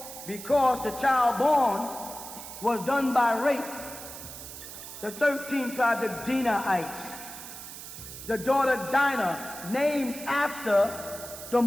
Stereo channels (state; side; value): noise; right; hiss, 12 dB below the sound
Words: because the child born was done by rape. The 13th tribe, the Dinaites. The daughter Dinah, named after the